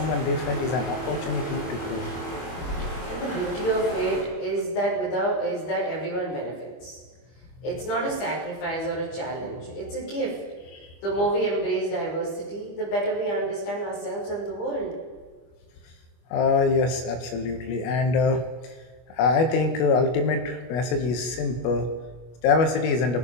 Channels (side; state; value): right; late; 25 ms